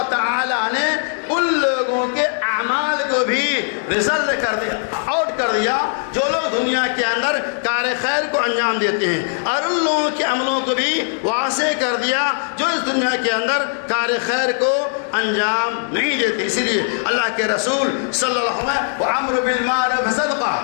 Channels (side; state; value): right; silent; 64 dB below the other